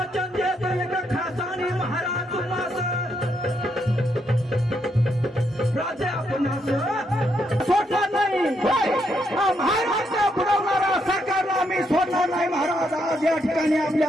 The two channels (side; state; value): both; normal; correlation 0.77